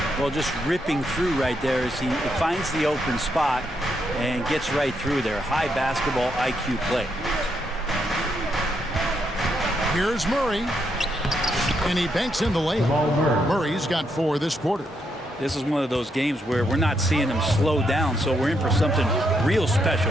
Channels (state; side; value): normal; both; correlation 0.78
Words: Well, just ripping through right there as he finds the open spot and gets right through there. High basketball IQ play. Here's Murray. And he banks in the layup. Murray's got 4 this quarter. This is one of those games where we're not seeing him slow down, so we're in for something real